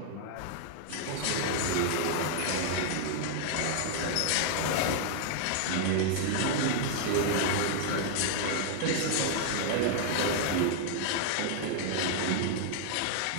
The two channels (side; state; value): both; different; correlation 0.00